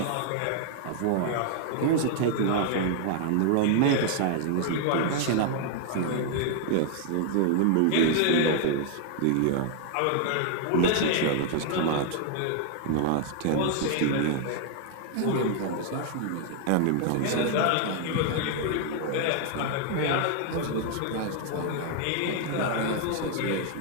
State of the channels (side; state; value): both; different; correlation 0.00